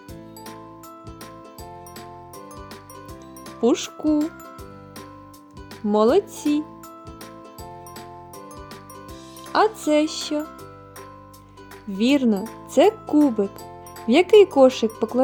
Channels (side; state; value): both; identical; correlation 1.00